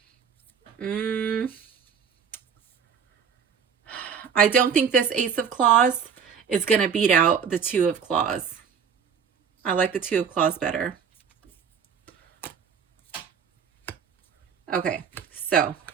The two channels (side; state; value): left; quieter; 6.9 dB